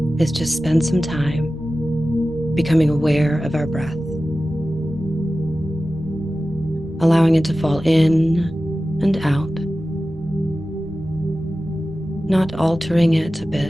is just spend some time becoming aware of our breath, allowing it to fall in and out, not altering it a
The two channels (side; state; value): right; noise; rumble, 20 dB below the sound